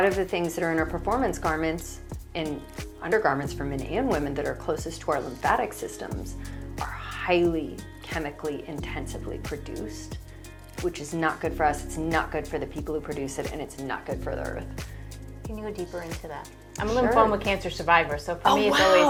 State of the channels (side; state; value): both; identical; correlation 1.00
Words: of the things that are in our performance garments and undergarments for men and women that are closest to our lymphatic systems are highly chemically intensively produced, which is not good for us, it's not good for the people who produce it, and it's not good for the earth. Can you go deeper into that? I'm a Sure. lymphoma cancer survivor, so for me it's